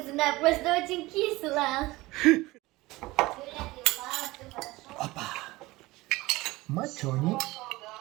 просто очень кисло. Мацони.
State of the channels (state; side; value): quieter; left; 20.2 dB